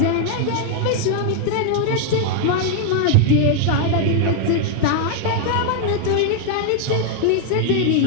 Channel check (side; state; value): both; different; correlation 0.00